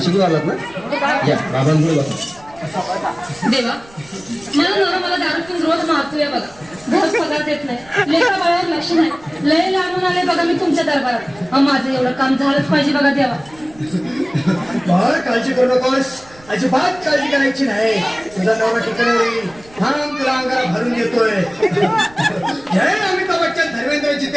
आलात ना? या बाबांपुढे बसा. देवा मला नवरा मला दारू पिऊन रोज मारतोय बघा. घर पगार देत नाही, लेखा बाळावर लक्ष नाही. लय लांबून आले बघा मी तुमच्या दरबारात. माझं एवढं काम झालंच पाहिजे बघा देवा. बाळ काळजी करू नकोस, अजिबात काळजी करायची नाही. तुझा नवरा ठिकाणी होईल. थांब तुला अंगाला भरून देतोय. जय अमिताभ बच्चन, धर्मेंद्र,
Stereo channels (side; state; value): right; noise; rumble, 24 dB below the sound